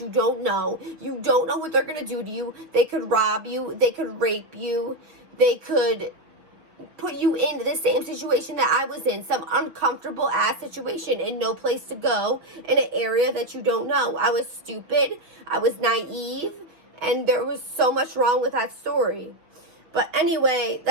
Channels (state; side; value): late; left; 6.2 ms